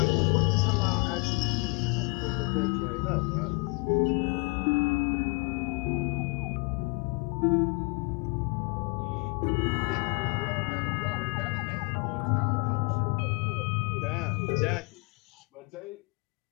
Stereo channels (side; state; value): right; quieter; 29.8 dB